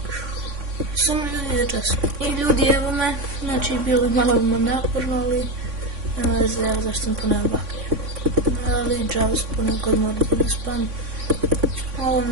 Samo ljudi za čas. I ljudi, evo me. Znači, bilo je malo naporno, ali nema veze, evo zašto sam poneo baklje. Ali džavu se ponekad morati da spam. Ovo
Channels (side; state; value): left; late; 3.6 ms